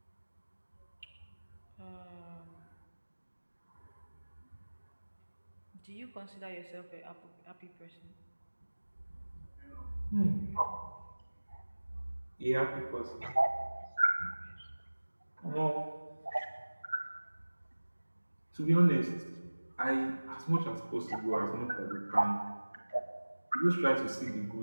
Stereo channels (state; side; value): inverted; both; correlation -1.00